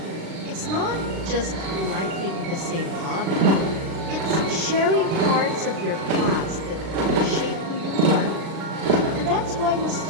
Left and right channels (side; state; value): left; late; 36 ms